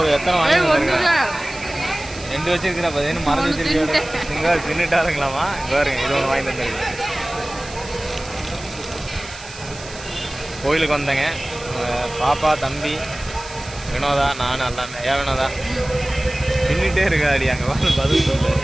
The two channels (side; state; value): right; noise; hiss, 16 dB below the sound